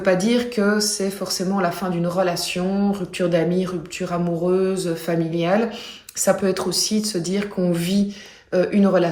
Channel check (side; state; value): both; identical; correlation 1.00